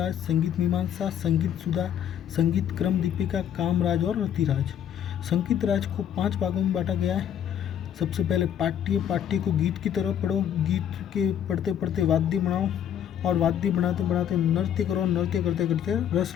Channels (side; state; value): right; quieter; 9.5 dB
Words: संगीत मीमांसा, संगीत सुधा, संगीत क्रम दीपिका, कामराज और रतिराज। संगीत राज को 5 भागों में बांटा गया है। सबसे पहले पाठ्य को गीत की तरह पढ़ो, गीत के पढ़ते पढ़ते वाद्य बनाओ, और वाद्य बनाते बनाते नृत्य करो, नृत्य करते करते रस